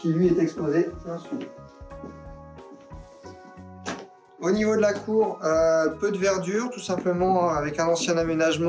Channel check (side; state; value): both; identical; correlation 1.00